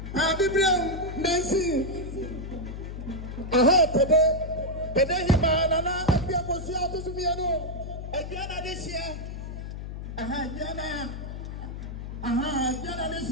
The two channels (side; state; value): left; noise; hum, 8 dB below the sound